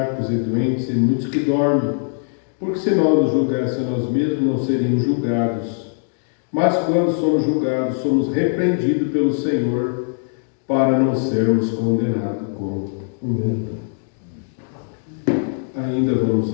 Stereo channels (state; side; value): silent; right; digital silence